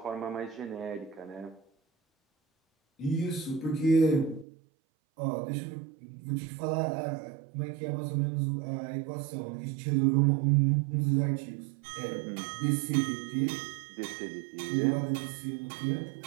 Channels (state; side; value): drops out; left; at 4.5 s